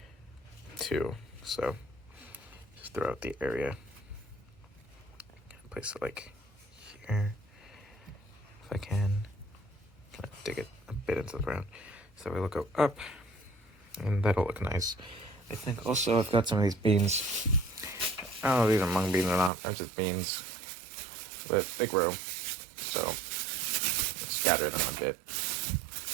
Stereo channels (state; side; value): drops out; left; at 19.5 s